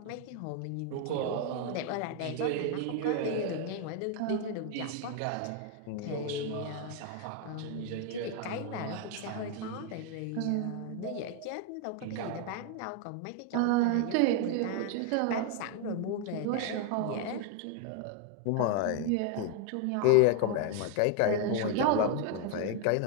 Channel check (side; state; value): both; different; correlation 0.00